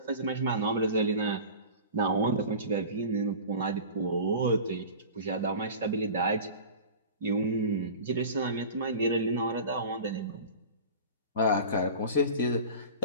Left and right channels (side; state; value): both; inverted; correlation -0.37